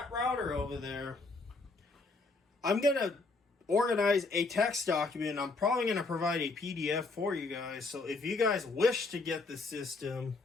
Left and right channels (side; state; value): right; quieter; 3.7 dB